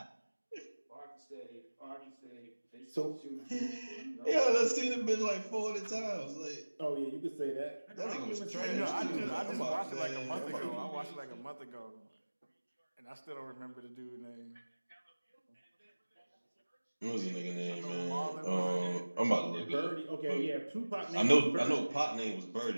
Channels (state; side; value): inverted; both; correlation -1.00